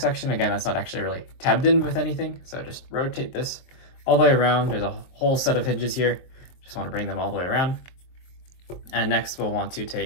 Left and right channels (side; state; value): right; late; 23 ms